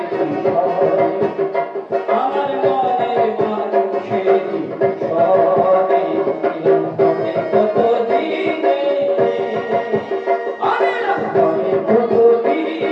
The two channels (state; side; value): identical; both; correlation 1.00